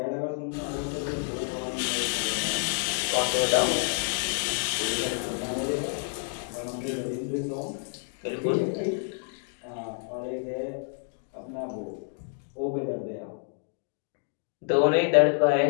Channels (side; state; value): right; silent; 59 dB below the other